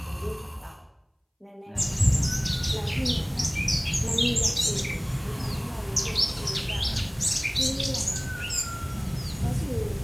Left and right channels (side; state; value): both; identical; correlation 1.00